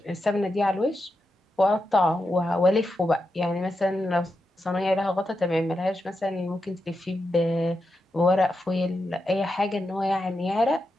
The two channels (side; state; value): both; normal; correlation 0.87